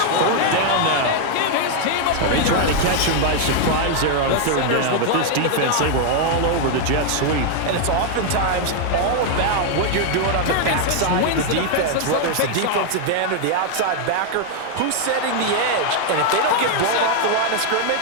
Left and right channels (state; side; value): different; both; correlation 0.00